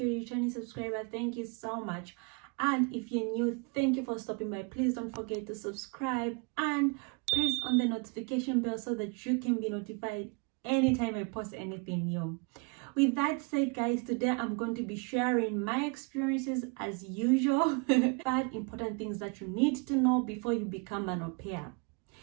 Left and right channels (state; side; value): quieter; left; 32.7 dB